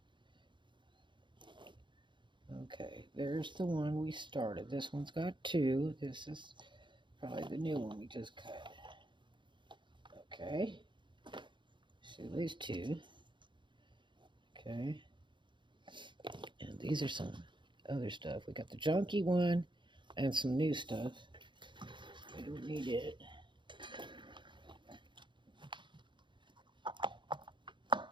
Okay, there's the one we started. This one's got two. This is probably the new one we just cut. Okay. Shoelace two. Okay. And these are some other stuff. We got the junky one and some new stuff. We don't need it.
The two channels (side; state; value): left; late; 0.23 ms